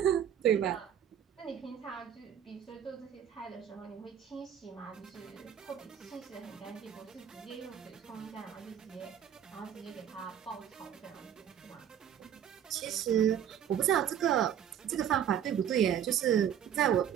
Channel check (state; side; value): quieter; left; 9.5 dB